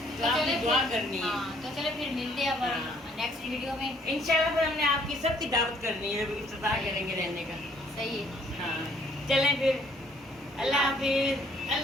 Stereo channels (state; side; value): normal; both; correlation 0.63